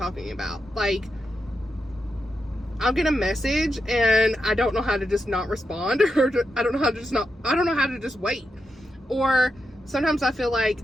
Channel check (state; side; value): normal; both; correlation 0.86